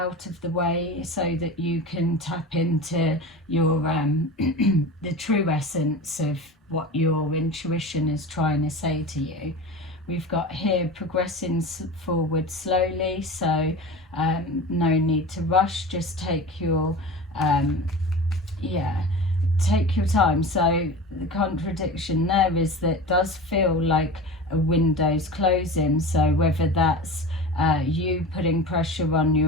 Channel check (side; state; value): both; normal; correlation 0.32